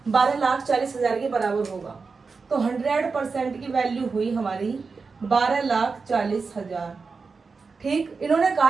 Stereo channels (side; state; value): left; quieter; 4.7 dB